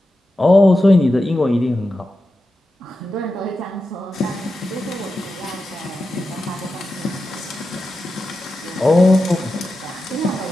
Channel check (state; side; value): normal; both; correlation 0.91